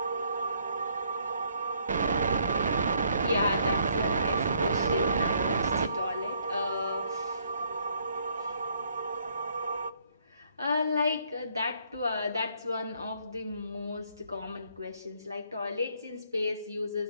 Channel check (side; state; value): both; inverted; correlation -0.67